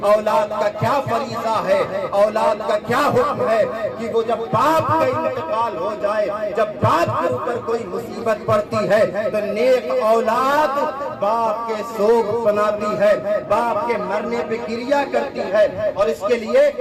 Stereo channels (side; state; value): both; identical; correlation 1.00